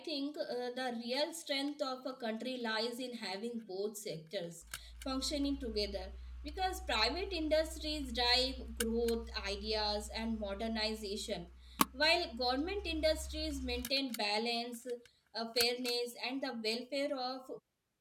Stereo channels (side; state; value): both; identical; correlation 1.00